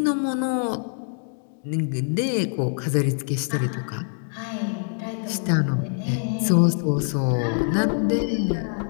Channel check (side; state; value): right; silent; digital silence